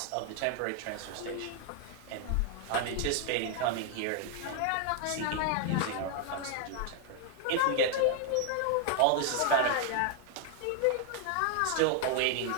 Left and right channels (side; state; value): both; different; correlation 0.00